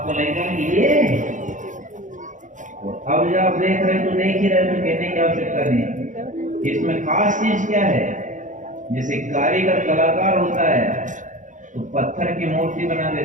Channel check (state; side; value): late; left; 0.37 ms